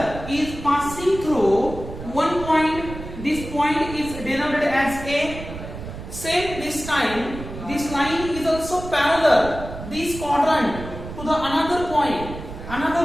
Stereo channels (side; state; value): right; noise; rumble, 11 dB below the sound